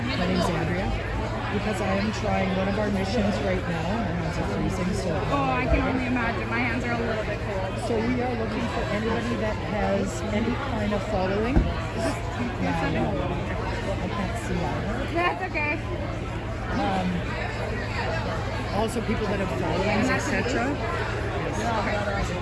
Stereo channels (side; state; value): both; identical; correlation 1.00